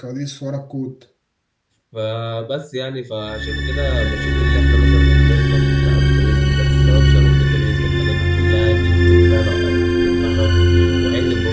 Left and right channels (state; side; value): identical; both; correlation 1.00